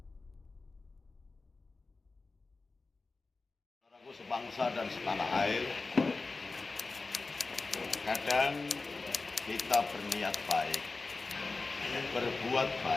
Sebangsa dan setanah air, kadang kita berniat baik, berbuat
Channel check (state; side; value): quieter; right; 3.8 dB